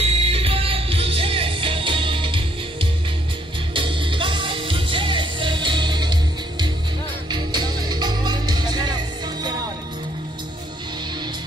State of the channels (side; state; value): both; normal; correlation 0.68